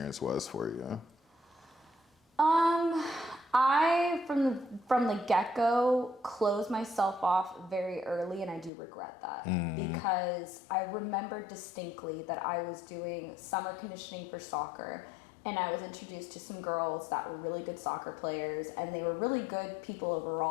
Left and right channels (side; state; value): right; drops out; at 8.7 s